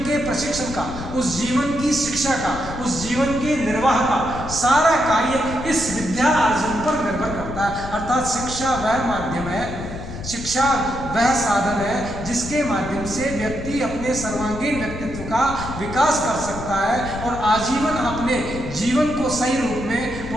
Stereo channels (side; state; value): left; noise; rumble, 10 dB below the sound